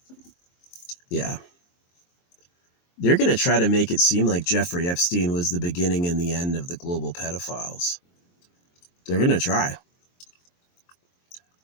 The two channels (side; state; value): right; late; 23 ms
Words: Yeah. They're going to try to make it seem like Jeffrey Epstein was the beginning and the end of the global pedophiles. They're going to try.